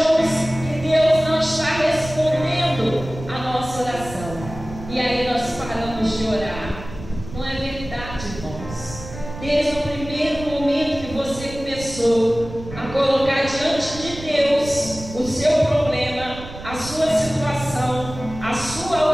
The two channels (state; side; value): noise; right; rumble, 12 dB below the sound